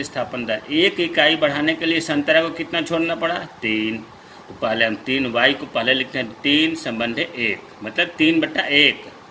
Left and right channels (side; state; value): both; identical; correlation 1.00